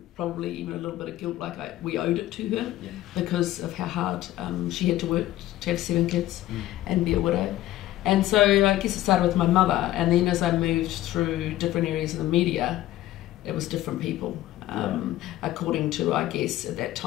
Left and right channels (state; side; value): quieter; right; 14.9 dB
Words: probably even a little bit of guilt, like we owed it to her because of how hard she had to work to have 7 kids and be a widow. And so I guess it started with my mother, and then as I moved through different areas of the media, it was different people. According to, I guess, at that